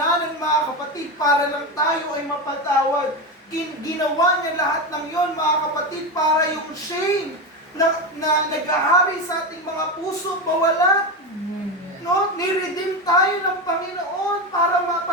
mga kapatid, para lang tayo ay mapatawad. Ginawa niya lahat ng yon, mga kapatid, para yung shame na naghahari sa ating mga puso mawala. No? Niredeem tayo ng Panginoon para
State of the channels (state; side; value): normal; both; correlation 0.17